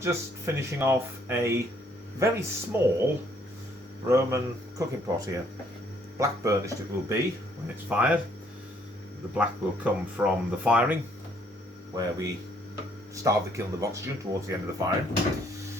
just finishing off a very small Roman cooking pot here. Black burnished it will be when it's fired. The black will come from the firing, where we starve the kiln of oxygen towards the end of the firing.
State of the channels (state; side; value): normal; both; correlation 0.66